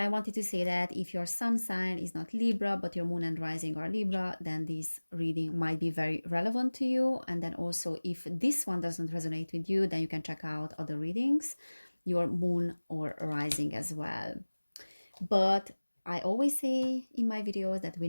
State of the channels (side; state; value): both; inverted; correlation -1.00